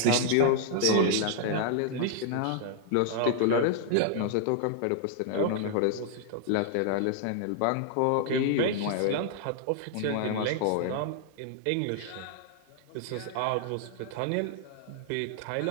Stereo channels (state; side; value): different; both; correlation -0.01